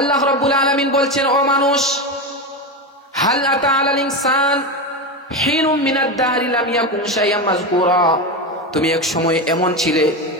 রাব্বুল আলামিন বলছেন, ও মানুষ, হাল আতা আলাল ইনসান হিনুম মিনাদ দাহরি লাম ইয়াকুন শাইআম মাযকুরা, তুমি এক সময় এমন ছিলে,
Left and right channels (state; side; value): normal; both; correlation 0.17